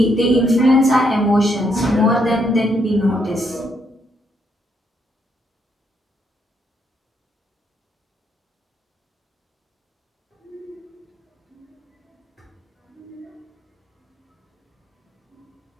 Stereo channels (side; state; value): both; normal; correlation 0.75